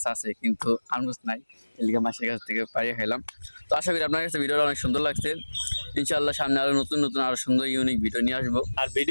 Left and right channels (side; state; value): both; inverted; correlation -1.00